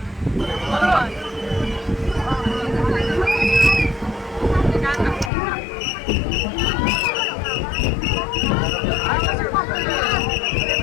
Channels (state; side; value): drops out; right; at 5.3 s